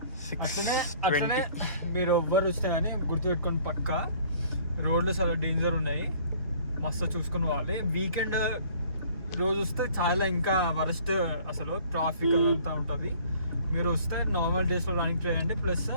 అట్లనే మీరు ఎవ్వరు వస్తే కానీ గుర్తుపెట్టుకొని పక్క రోడ్లు చాలా డేంజర్ ఉన్నాయి, మస్తు చూసుకుని పోవాలి. వీకెండ్ రోజు వస్తే చాలా ఇంకా వరస్ట్, అసలు ట్రాఫిక్ అదంతా ఉంటుంది. మీరు వస్తే నార్మల్ డేస్లో రన్నింగ్ చేయండి. ప్లస్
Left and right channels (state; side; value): inverted; both; correlation -0.54